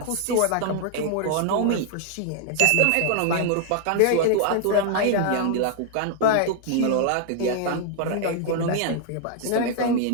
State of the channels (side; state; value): both; different; correlation -0.01